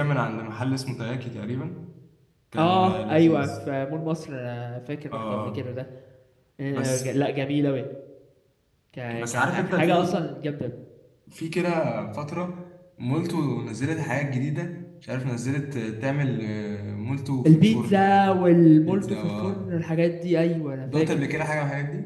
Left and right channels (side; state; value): both; identical; correlation 1.00